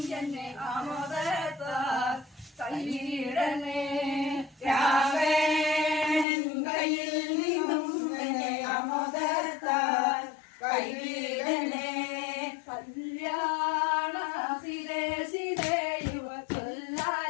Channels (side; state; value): right; drops out; at 6.2 s